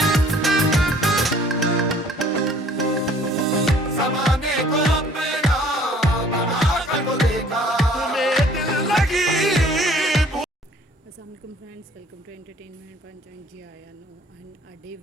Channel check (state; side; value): normal; both; correlation 0.55